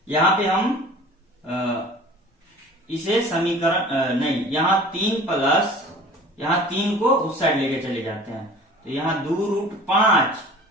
यहाँ पे हम इसे समीकरण नहीं, यहाँ 3 को उस साइड लेके चले जाते हैं, तो यहाँ 2 रूट 5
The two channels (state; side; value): normal; both; correlation 0.44